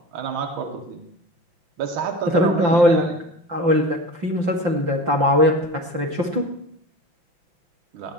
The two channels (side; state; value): left; late; 5.8 ms